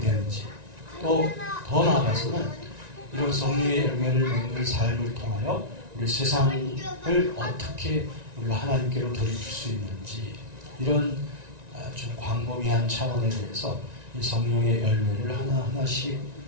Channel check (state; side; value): late; left; 1.9 ms